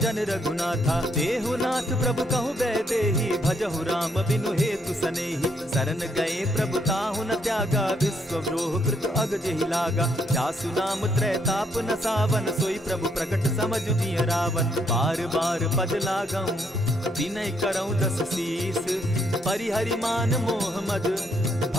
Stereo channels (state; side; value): normal; both; correlation 0.72